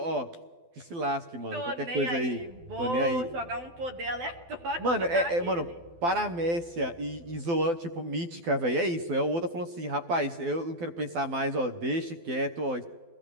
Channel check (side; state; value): left; late; 12 ms